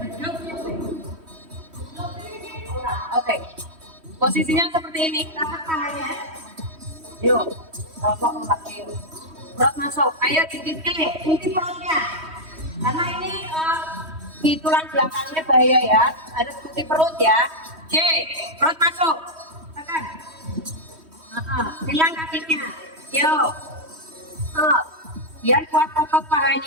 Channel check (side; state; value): left; late; 3.1 ms